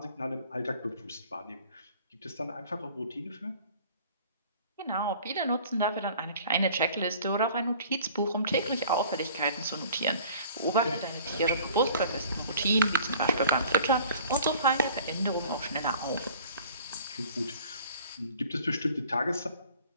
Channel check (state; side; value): inverted; both; correlation -0.49